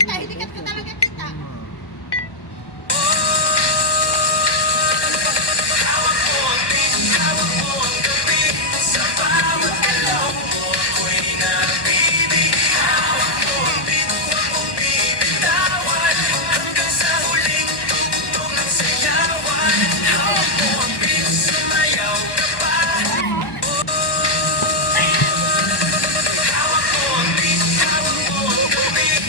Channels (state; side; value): late; right; 1.2 ms